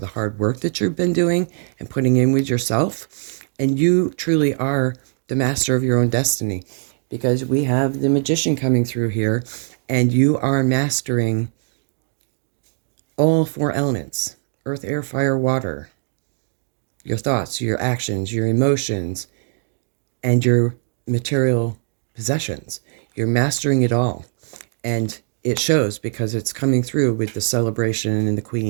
hard work that you've been doing and putting in with yourself. And you truly are the master of your own destiny, because we have the Magician coming through here, and you are mastering all four elements: earth, air, fire, water. Your thoughts, your actions, your emotions, and your material possessions. You're mastering it all. And it shows, because it's coming through with the celebration and the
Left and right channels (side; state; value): left; silent; digital silence